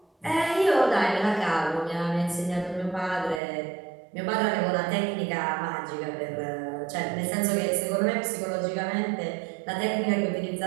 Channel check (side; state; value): left; drops out; at 3.4 s